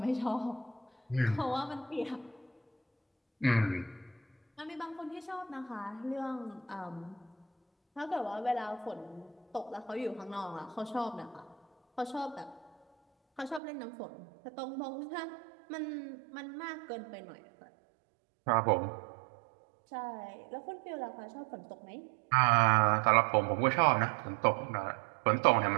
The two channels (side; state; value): left; drops out; at 13.6 s